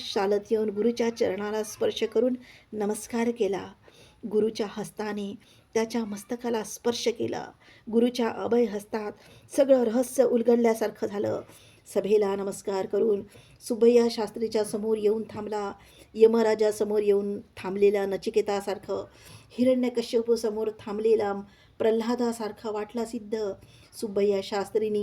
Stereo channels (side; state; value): both; identical; correlation 1.00